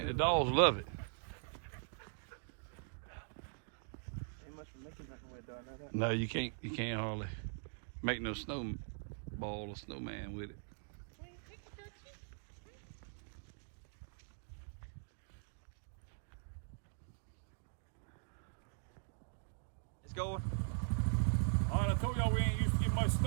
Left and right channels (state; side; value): silent; left; digital silence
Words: the dogs love it. Ain't much for making nothing with it, though, I know that. No, you can't hardly make no snowball or snowman with it. It's going. All right, I told y'all we ain't used to get much